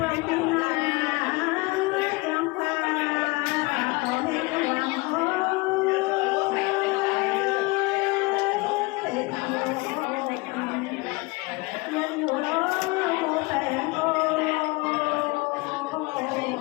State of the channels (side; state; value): right; quieter; 25.3 dB